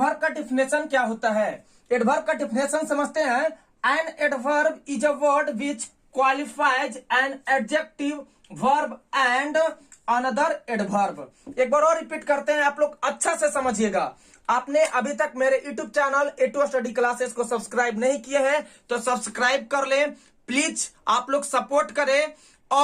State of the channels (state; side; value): identical; both; correlation 1.00